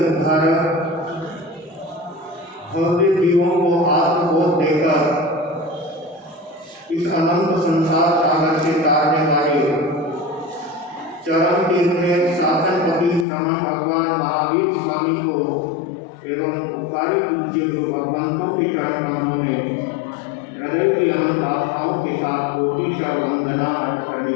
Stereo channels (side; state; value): right; drops out; at 13.2 s